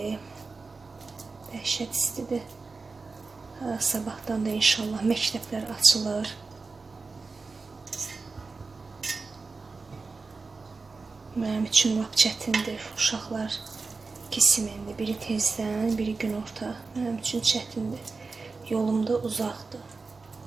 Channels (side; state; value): left; quieter; 4.1 dB